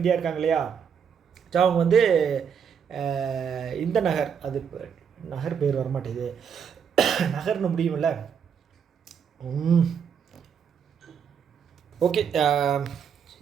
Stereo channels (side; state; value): left; quieter; 7.2 dB